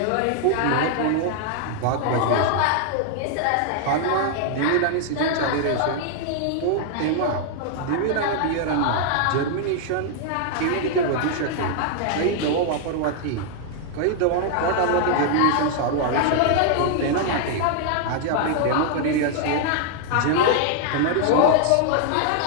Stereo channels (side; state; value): both; different; correlation -0.01